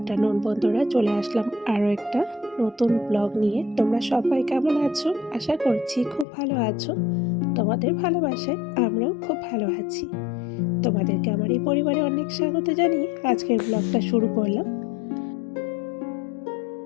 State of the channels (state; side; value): drops out; right; at 6.2 s